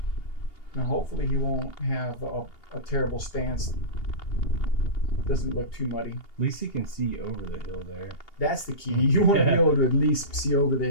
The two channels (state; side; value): late; right; 2.8 ms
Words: Now, hopefully he won't have a terrible stance. Doesn't look too muddy. At least he can see over the hill there. That's the key. You want to be able to at least see over the